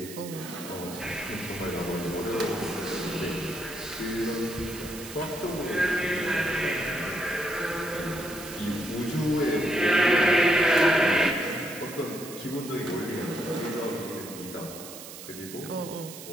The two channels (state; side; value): noise; right; hiss, 13 dB below the sound